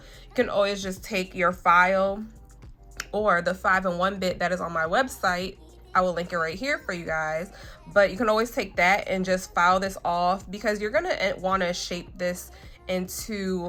You can always just take your file or the 5-in-1 bit that is on my website. I will link it right here for you guys, but you can always take that and just file this off, because you're gonna want to shape this into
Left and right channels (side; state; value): both; identical; correlation 1.00